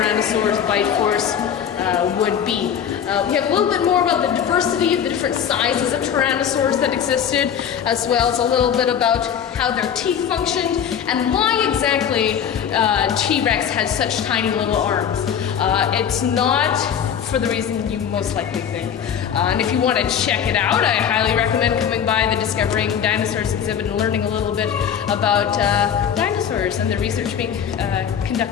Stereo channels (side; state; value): right; quieter; 8.5 dB